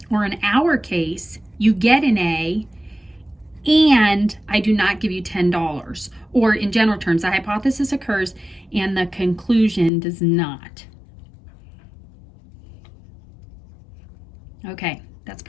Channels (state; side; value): drops out; right; at 9.9 s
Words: or in our case, you get an A and I do not give you $10. Or in general terms, the hypothesis occurs and the conclusion does not. Okay, that's